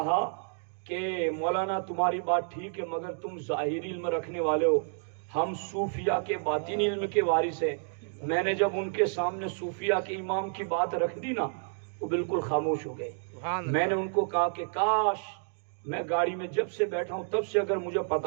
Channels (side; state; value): left; silent; digital silence